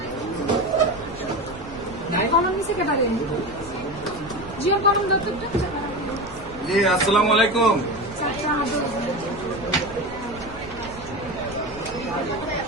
জি আসসালামু আলাইকুম।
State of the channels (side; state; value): right; noise; rumble, 16 dB below the sound